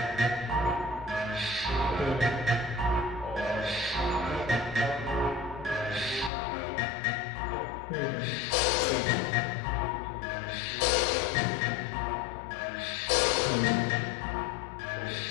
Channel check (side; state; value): right; drops out; at 6.3 s